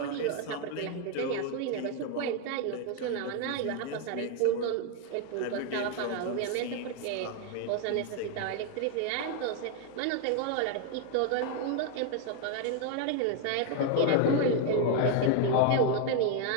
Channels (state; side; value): different; both; correlation 0.01